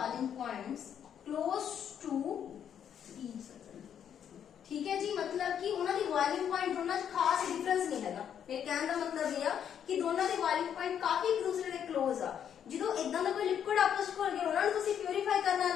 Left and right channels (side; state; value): right; quieter; 8.9 dB